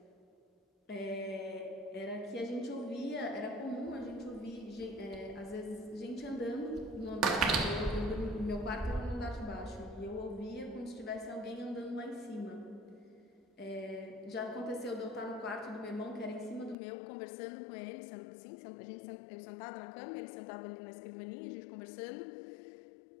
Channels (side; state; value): right; drops out; at 16.8 s